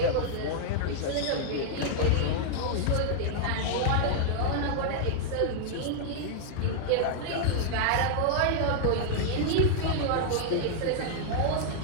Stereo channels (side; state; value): both; different; correlation -0.01